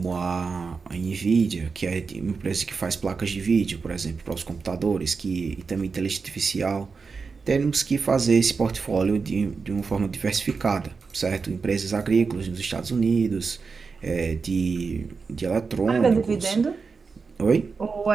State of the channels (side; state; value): left; quieter; 4.9 dB